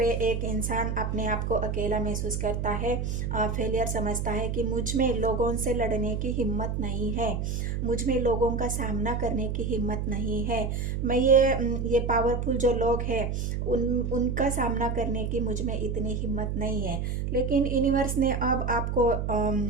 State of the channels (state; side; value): noise; right; hum, 2 dB below the sound